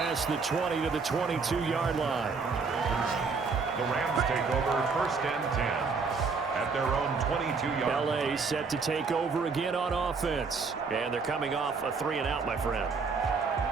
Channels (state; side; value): quieter; left; 4.8 dB